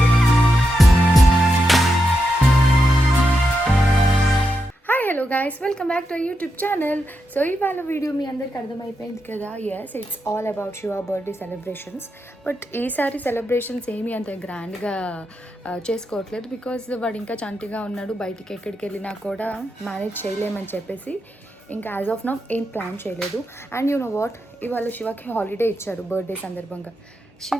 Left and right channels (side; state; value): both; normal; correlation 0.85